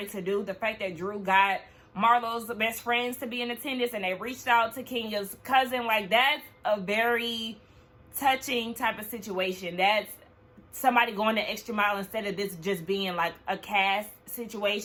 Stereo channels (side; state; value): both; identical; correlation 1.00